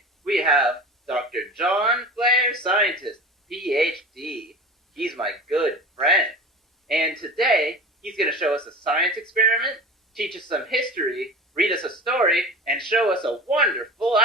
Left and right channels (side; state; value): both; normal; correlation 0.34